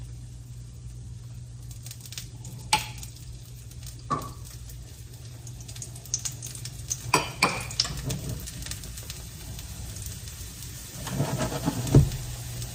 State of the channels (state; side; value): identical; both; correlation 1.00